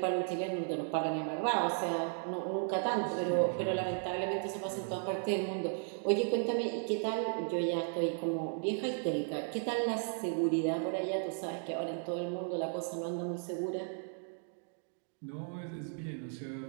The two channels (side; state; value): left; silent; 54 dB below the other